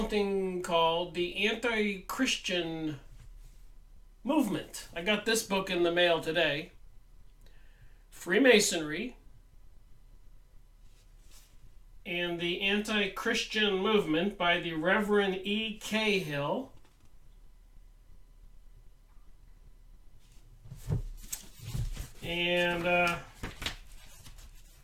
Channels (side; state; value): both; identical; correlation 1.00